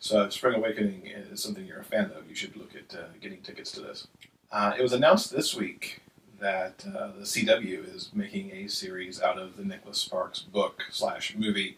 if Spring Awakening is something you're a fan of, you should look at getting tickets to this. It was announced this week that the CW is making a series out of the Nicholas Sparks book/movie,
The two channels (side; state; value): both; identical; correlation 1.00